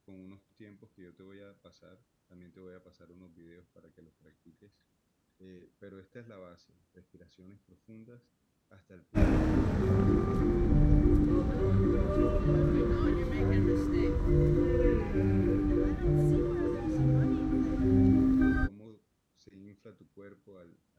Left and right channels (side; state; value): both; identical; correlation 1.00